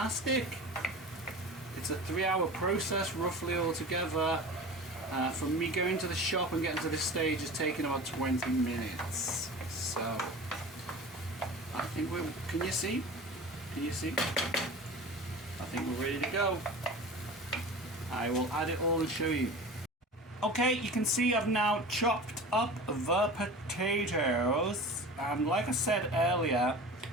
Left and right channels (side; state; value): both; normal; correlation 0.35